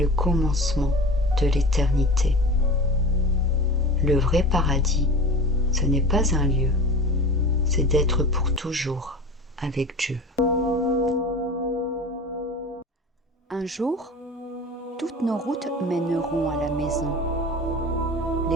commencement de l'éternité. Le vrai paradis, ce n'est pas un lieu, c'est d'être pour toujours avec Dieu. Un jour, toutes nos routes mèneront à la maison.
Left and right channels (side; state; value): both; normal; correlation 0.34